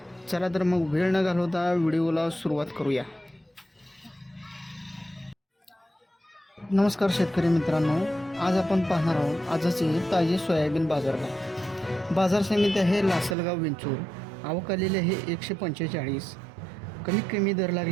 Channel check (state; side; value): drops out; left; at 13.4 s